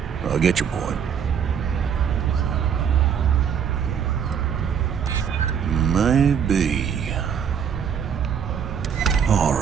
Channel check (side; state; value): left; quieter; 7.7 dB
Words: I get your point. Maybe. All